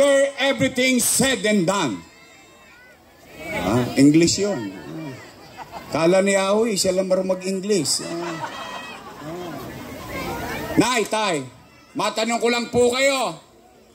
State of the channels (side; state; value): both; identical; correlation 1.00